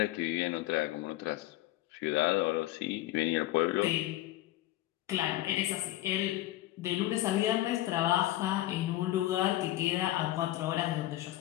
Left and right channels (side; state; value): right; quieter; 15.8 dB